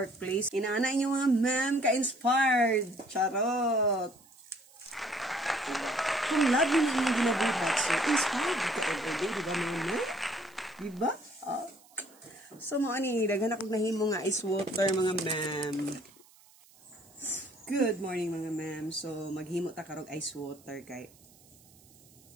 Inaana inyo mga ma'am ka-inspired. Charot. Kung love mo yung ginabuhat, so inspired ka everyday, di ba mga ma'am? Di ba? So mo ani, daghan akong nahimo nga ice water mga ma'am. Good morning mga ma'am. So maghimo ta karog ice water kay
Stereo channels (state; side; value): noise; right; hiss, 27 dB below the sound